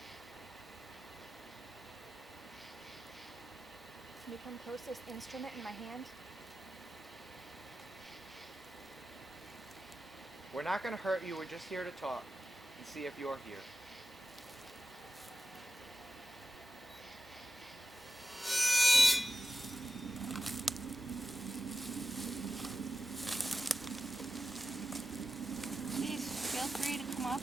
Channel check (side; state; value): both; normal; correlation 0.93